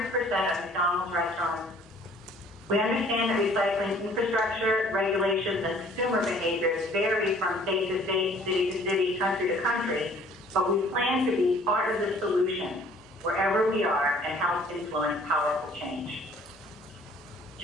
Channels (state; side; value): normal; both; correlation 0.55